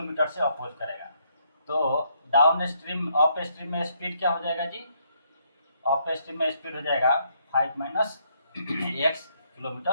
से अपोज करेगा। तो डाउन स्ट्रीम अप स्ट्रीम में स्पीड क्या हो जाएगा जी? अप स्ट्रीम में स्पीड हो जाएगा 5 minus x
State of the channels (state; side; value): inverted; both; correlation -0.72